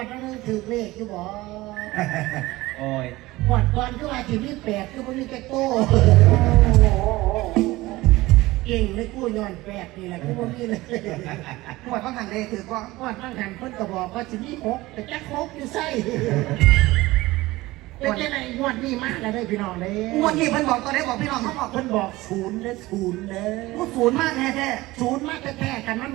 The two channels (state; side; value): quieter; left; 19.1 dB